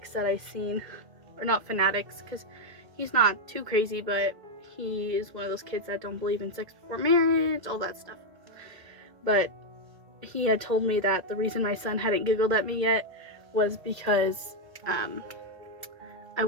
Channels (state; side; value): late; left; 1.7 ms